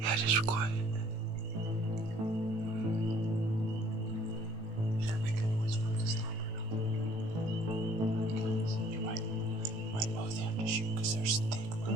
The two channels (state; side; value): late; left; 18 ms